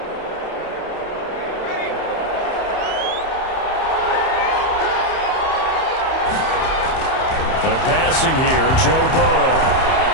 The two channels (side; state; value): right; late; 31 ms